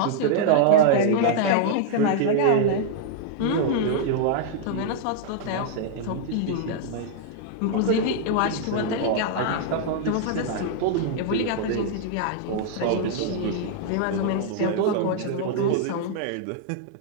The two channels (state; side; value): different; both; correlation 0.00